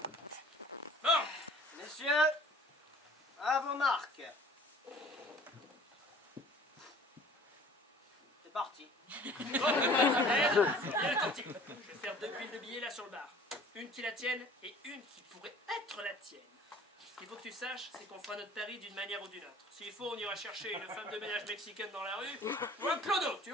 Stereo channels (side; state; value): both; normal; correlation 0.49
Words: Bon, Messieurs, à vos marques. C'est parti. bon, bien attentif. Je vais faire 2 piles de billets là sur le bar. Une qui la tienne et une qui pourrait être la tienne. Ce qu'il faut que tu saches, c'est qu'on fera notre pari d'une manière ou d'une autre. S'il faut, on ira chercher une femme de ménage mexicaine dans la rue, ou un clodo, tu